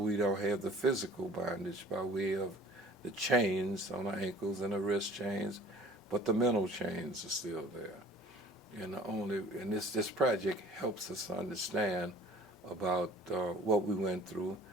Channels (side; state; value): both; normal; correlation 0.48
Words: don't have the physical bondage by way of the chains on our ankles and the wrist chains, but the mental chains are still there. And this project helps us understand about what we went through,